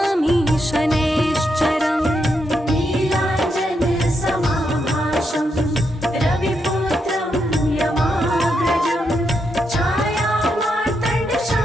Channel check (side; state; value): both; normal; correlation 0.81